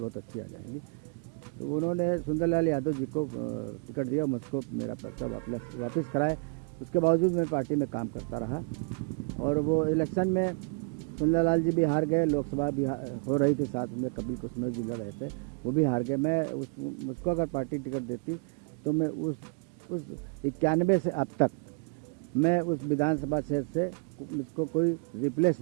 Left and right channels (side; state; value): left; quieter; 35.0 dB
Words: अच्छी आ जाएंगी। तो उन्होंने सुंदरलाल यादव जी को टिकट दिया, मुझको मेरा पर्चा वापस कराए। उसके बावजूद मैं पार्टी में काम करता रहा और वो इलेक्शन में सुंदरलाल जी भी हार गए, लोकसभा भी हो रही थी, साथ में कपिल कुसमेव जी लड़ रहे थे, वो भी हार गए। मैं मुझको अगर पार्टी टिकट देती तो मैं उस 91 से अब तक मैं उस विधानसभा क्षेत्र से मुझको कोई रिप्लेस